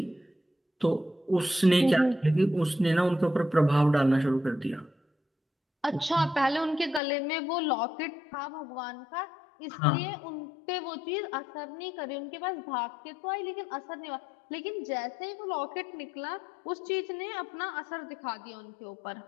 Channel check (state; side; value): drops out; right; at 7.0 s